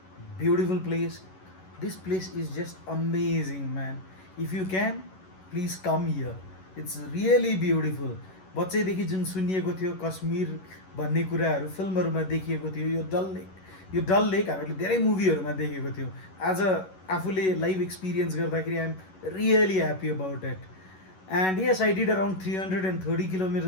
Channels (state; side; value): late; right; 11 ms